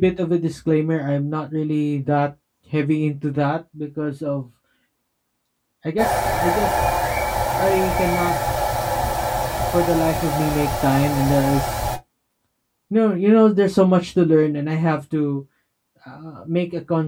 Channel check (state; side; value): identical; both; correlation 1.00